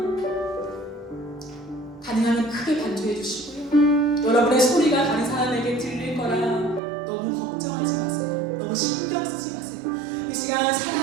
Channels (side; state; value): left; drops out; at 6.8 s